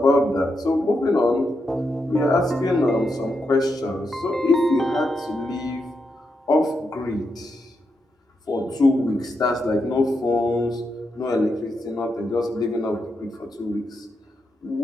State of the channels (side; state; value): both; normal; correlation 0.84